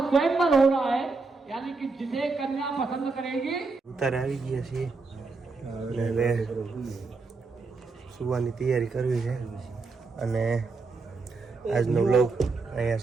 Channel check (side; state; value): left; quieter; 4.0 dB